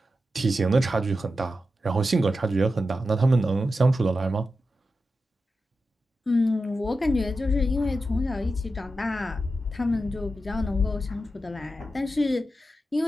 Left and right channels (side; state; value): both; normal; correlation 0.90